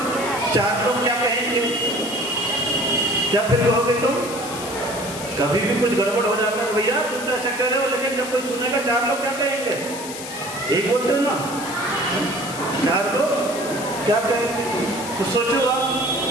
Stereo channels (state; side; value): noise; left; hiss, 10 dB below the sound